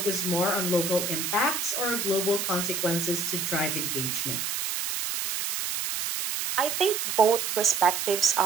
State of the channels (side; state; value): right; noise; hiss, 2 dB below the sound